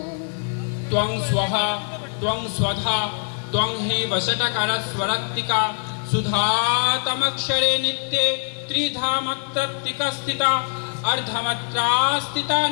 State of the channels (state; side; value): silent; right; digital silence